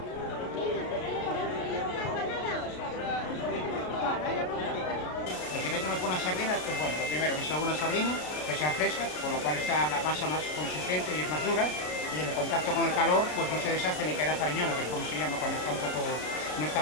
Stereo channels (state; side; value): late; right; 33 ms